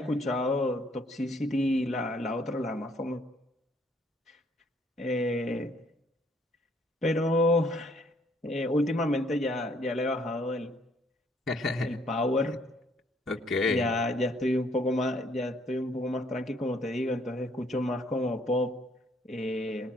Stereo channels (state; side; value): normal; both; correlation 0.65